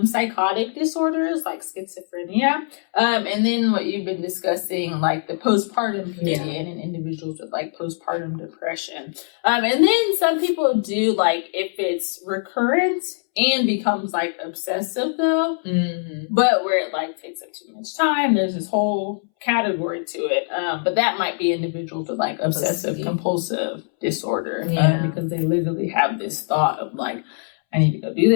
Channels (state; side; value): silent; right; 64 dB below the other